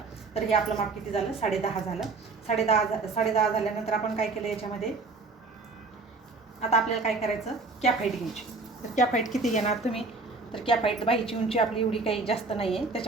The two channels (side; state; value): left; quieter; 3.8 dB